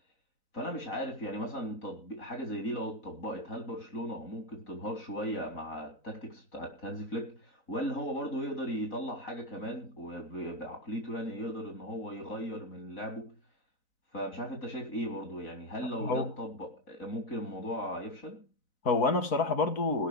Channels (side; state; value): right; late; 4.0 ms